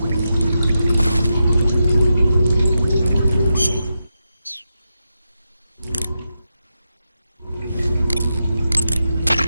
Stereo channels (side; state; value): both; inverted; correlation -0.88